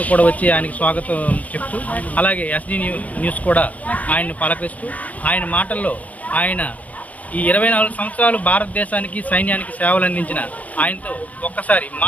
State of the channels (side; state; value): right; late; 0.072 ms